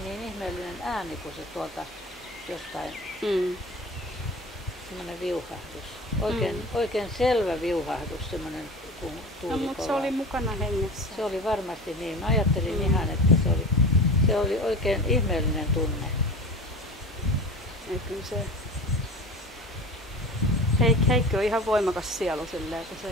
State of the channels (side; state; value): both; normal; correlation 0.35